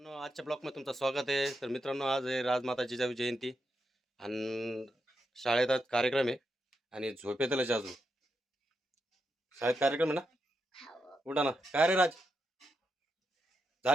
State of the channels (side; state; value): both; normal; correlation 0.85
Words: आजच्या ब्लॉगमध्ये तुमचं स्वागत आहे. तर मित्रांनो, आज आहे राजमाता जिजाऊ जयंती आणि शाळेत आज कार्यक्रम आहे आणि झोपेतलंच अजून शाळेत कार्यक्रम आहे ना. उठा ना. काय रे राज,